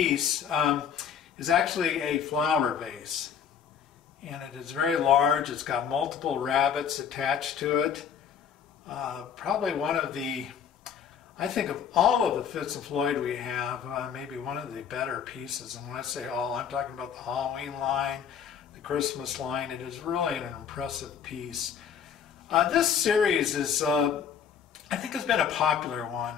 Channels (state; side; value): quieter; right; 7.9 dB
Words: is actually a flower vase. And it is very large. It's got multiple rabbits attached to it. Probably one of the, I think of all of the Fitz and Floyd we have, maybe one of the better pieces. And when I say all, I'm talking about the Halloween line, the Christmas line. It is really an impressive piece. This series is, I think, has been a popular